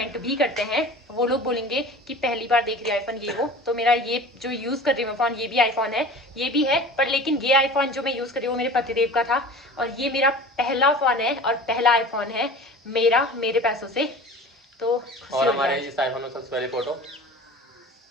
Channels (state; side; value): normal; both; correlation 0.39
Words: भी करते हैं। वो लोग बोलेंगे कि पहली बार देख रही है आईफोन ये वो। तो मेरा ये जो यूज कर रही हूँ फोन, ये भी आईफोन है, ये भी है, पर लेकिन ये आईफोन जो मैं यूज कर रही हूँ वो मेरे पतिदेव का था और ये मेरा पहला फोन है और पहला आईफोन है मेरा, मेरे पैसों से। तो और हमारे इस आईफोन में सबसे पहली फोटो